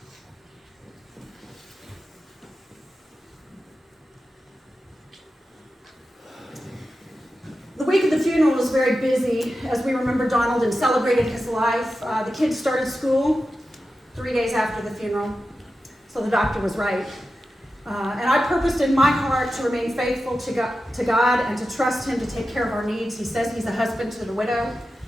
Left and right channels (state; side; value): normal; both; correlation 0.92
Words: The week of the funeral was very busy as we remembered Donald and celebrated his life. The kids started school 3 days after the funeral, so the doctor was right. And I purposed in my heart to remain faithful to God and to trust him to take care of our needs. He says he's a husband to the widow,